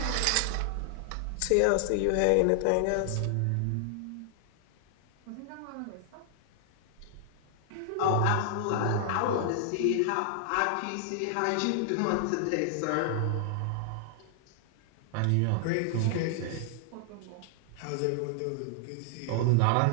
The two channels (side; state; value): both; different; correlation 0.00